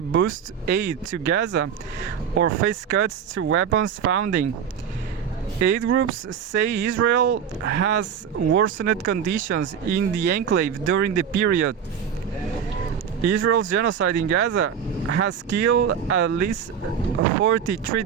boost aid to Gaza or face cuts to weapons funding. Aid groups say Israel has worsened conditions in the enclave during the period. Israel's genocide in Gaza has killed at least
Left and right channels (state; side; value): quieter; left; 7.9 dB